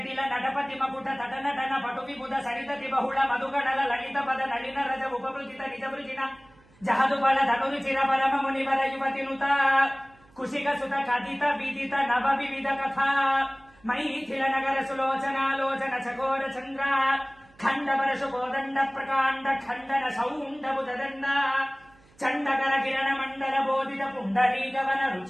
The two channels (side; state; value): right; noise; hum, 29 dB below the sound